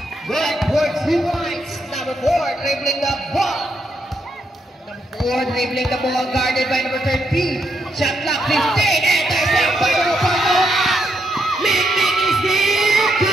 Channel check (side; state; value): both; normal; correlation 0.79